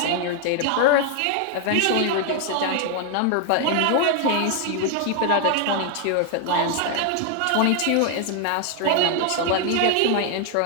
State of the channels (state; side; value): different; both; correlation 0.00